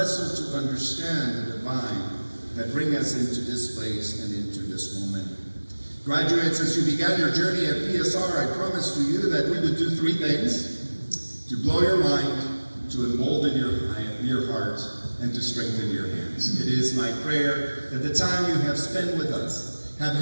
to understand the divine that bring us into this place and into this moment. Graduates, as you began your journey at PSR, I promised to you that we would do 3 things: to blow your mind, to embolden your heart, and to strengthen your hands. It is my prayer that the time you have spent with us have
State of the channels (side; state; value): both; inverted; correlation -1.00